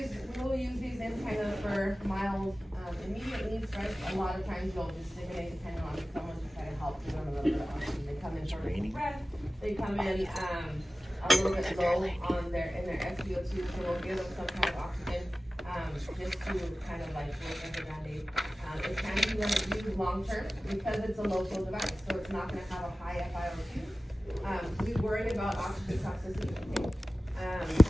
we'll use these in kind of for mild, immediate needs, right? A lot of times you'll just stimulate depending on someone to kind of help give them a little bit of oxygen. They come in for a deep breath, they come in, a little bit low on in their SpO2, so we'll give them some kind of oxygen. just to kind of like work as a Band-Aid. It can be used long-term because it's a low flow device, so it's not gonna have a high FiO2. We worry about oxygen toxicity, okay?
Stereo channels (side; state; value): both; normal; correlation 0.96